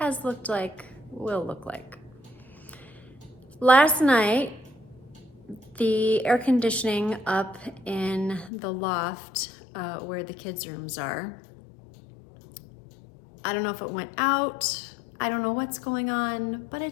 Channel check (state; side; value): drops out; right; at 8.5 s